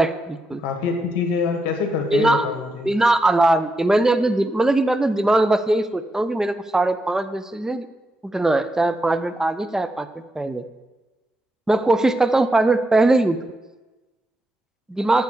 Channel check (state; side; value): normal; both; correlation 0.85